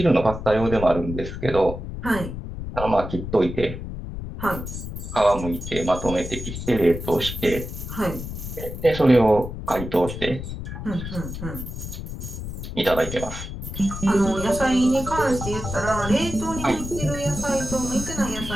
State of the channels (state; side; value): noise; left; rumble, 8 dB below the sound